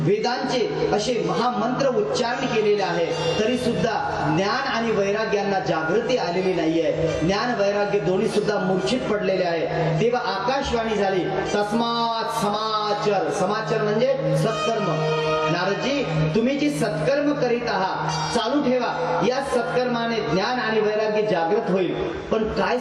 असे महामंत्र उच्चारण केलेले आहे, तरी सुद्धा ज्ञान आणि वैराग्यांना जागृती आलेली नाहीये. ज्ञान वैराग्य दोन्ही सुद्धा मूर्छित पडलेले आहे. तेव्हा आकाशवाणी झाली, तस्मात् समाचर. समाचार म्हणजे सत्कर्म. नारदजी तुम्ही जी सत्कर्म करीत आहात चालू ठेवा, या सत्कर्माने ज्ञान आणि वैराग्य जागृत होईल. पण काय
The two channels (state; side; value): identical; both; correlation 1.00